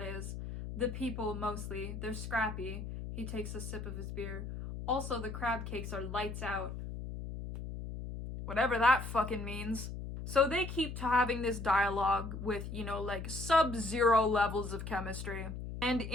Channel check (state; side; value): noise; left; hum, 7 dB below the sound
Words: is. The people mostly, they're scrappy. He takes a sip of his beer. Also, the crab cakes are lights out. Whatever that fucking means. So they keep having this dialogue with, sub-zero levels of chemistry. And